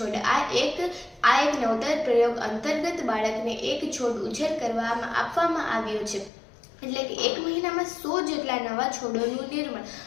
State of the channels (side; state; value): right; drops out; at 6.3 s